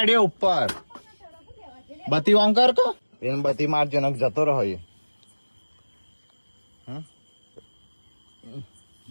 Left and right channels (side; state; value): both; inverted; correlation -1.00